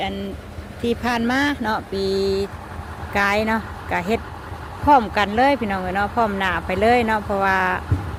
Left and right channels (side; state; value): both; identical; correlation 1.00